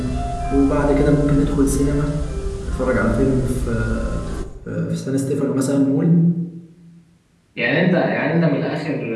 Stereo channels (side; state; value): both; identical; correlation 1.00